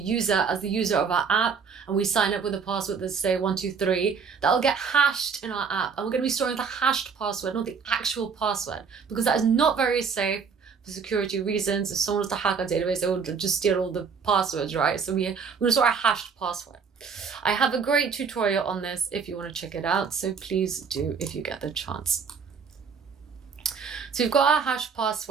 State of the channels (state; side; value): quieter; left; 5.9 dB